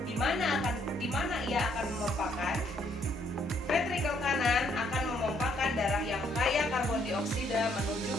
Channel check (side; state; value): both; normal; correlation 0.69